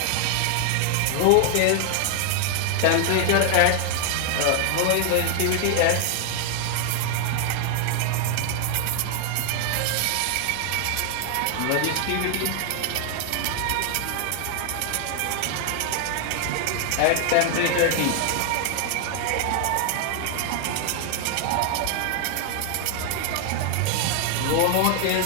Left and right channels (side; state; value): both; different; correlation 0.00